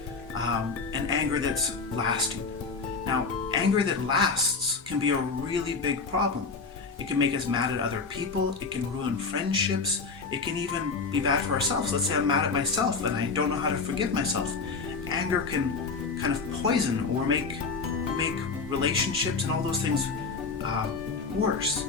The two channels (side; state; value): right; quieter; 4.6 dB